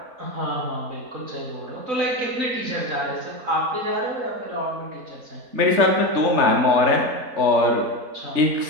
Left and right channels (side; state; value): left; late; 3.5 ms